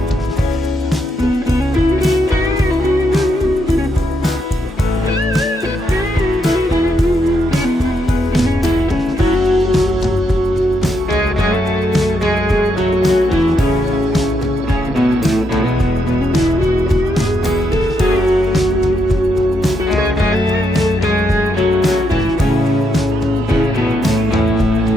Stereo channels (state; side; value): normal; both; correlation 0.78